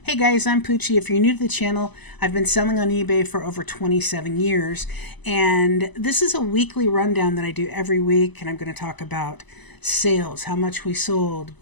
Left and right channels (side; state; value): right; late; 1.0 ms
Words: Hey guys, I'm Poochie. If you're new to the channel, I've been selling on eBay for over 27 years, and this is a weekly rundown that I do every week, and I'm going to talk about sales, how much we sold,